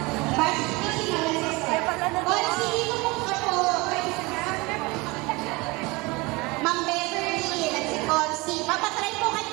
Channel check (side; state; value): left; quieter; 24.4 dB